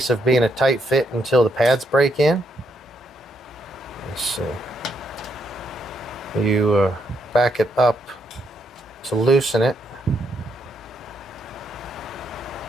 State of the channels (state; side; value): normal; both; correlation 0.77